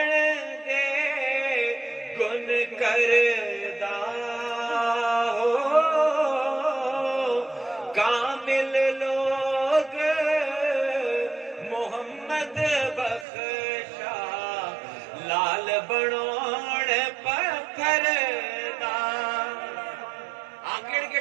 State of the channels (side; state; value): left; drops out; at 13.2 s